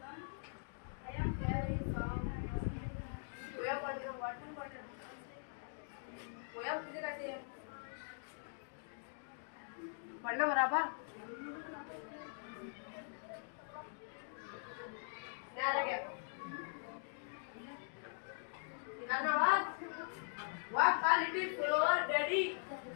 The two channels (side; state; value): right; silent; digital silence